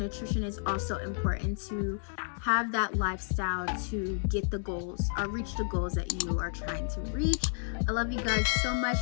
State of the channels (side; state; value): right; silent; 57 dB below the other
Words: is also important to have that lifestyle to get the goals or reach the goals that you are trying to reach. I love you guys so much.